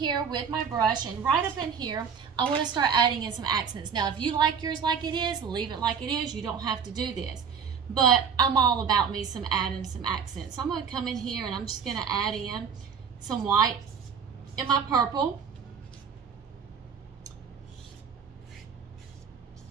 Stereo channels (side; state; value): left; quieter; 6.7 dB